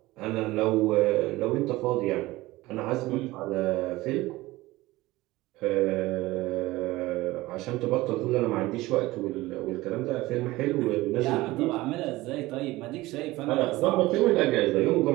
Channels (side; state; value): left; quieter; 19.0 dB